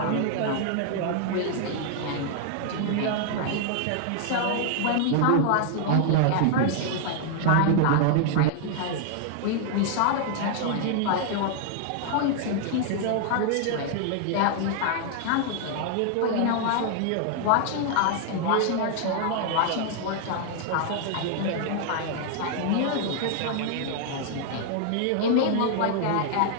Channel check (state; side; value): different; both; correlation 0.00